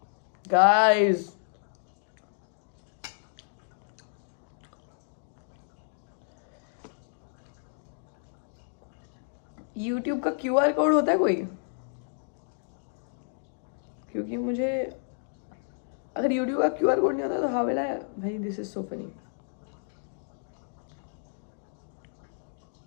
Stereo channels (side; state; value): right; silent; digital silence